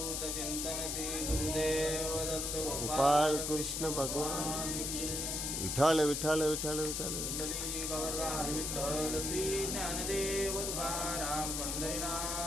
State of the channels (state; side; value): noise; left; hiss, 1 dB below the sound